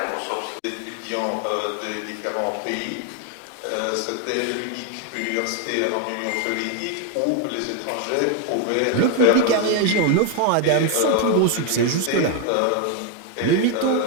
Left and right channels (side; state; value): both; different; correlation 0.01